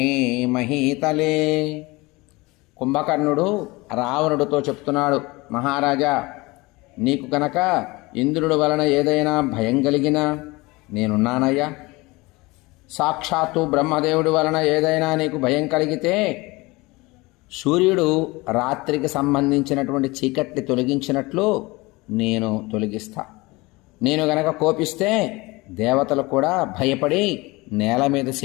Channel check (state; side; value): quieter; right; 23.1 dB